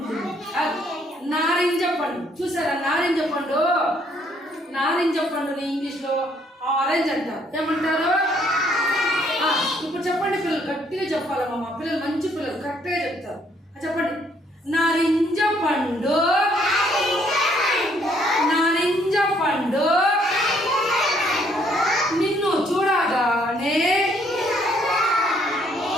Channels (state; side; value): normal; both; correlation 0.67